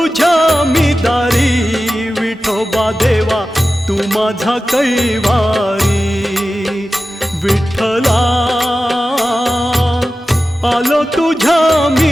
मी दारी विठोबा देवा तू माझा कैवारी विठ्ठला आलो तुझ्या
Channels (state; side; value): normal; both; correlation 0.94